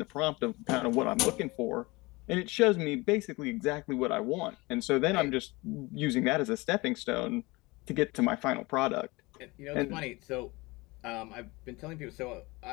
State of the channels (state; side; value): quieter; right; 23.5 dB